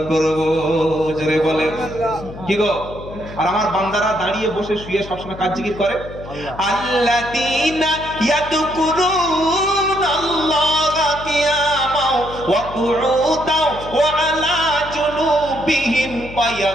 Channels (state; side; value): noise; left; hum, 14 dB below the sound